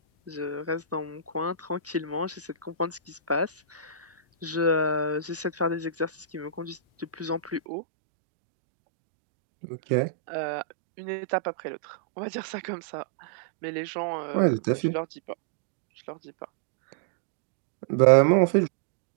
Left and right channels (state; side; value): drops out; left; at 7.6 s